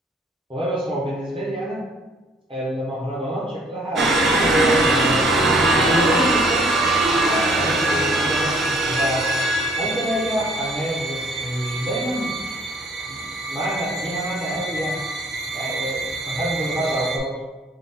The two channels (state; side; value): normal; both; correlation 0.59